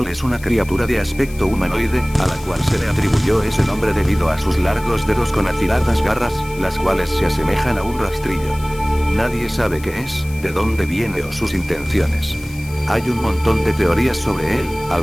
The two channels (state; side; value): noise; left; hiss, 19 dB below the sound